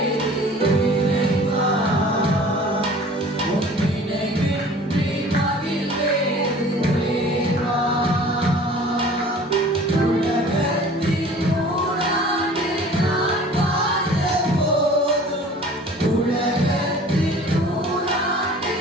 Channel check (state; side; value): normal; both; correlation 0.46